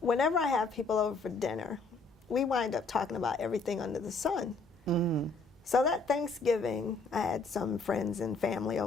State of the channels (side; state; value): right; quieter; 3.7 dB